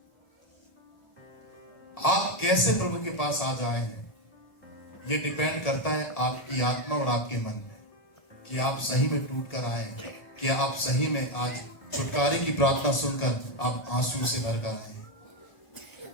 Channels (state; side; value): late; right; 1.7 ms